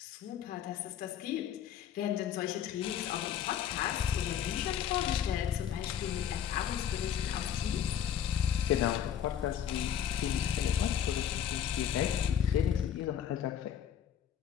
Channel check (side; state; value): right; quieter; 9.2 dB